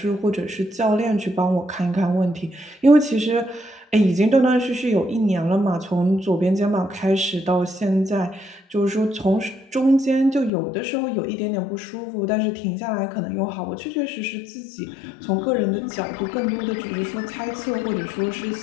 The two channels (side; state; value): right; drops out; at 10.5 s